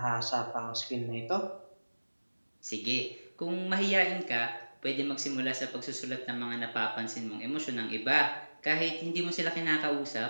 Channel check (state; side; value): inverted; both; correlation -1.00